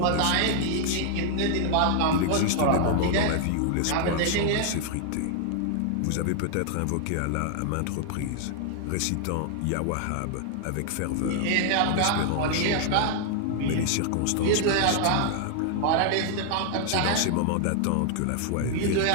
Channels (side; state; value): both; different; correlation 0.00